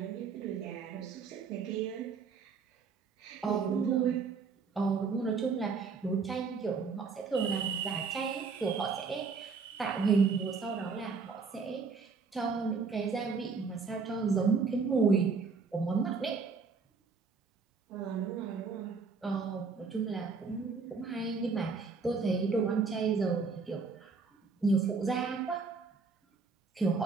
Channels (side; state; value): left; quieter; 4.9 dB